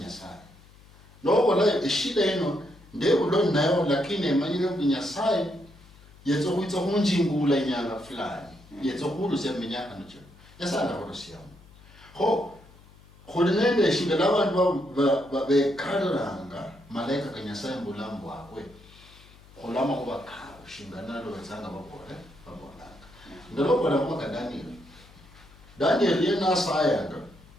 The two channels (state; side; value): noise; left; hum, 24 dB below the sound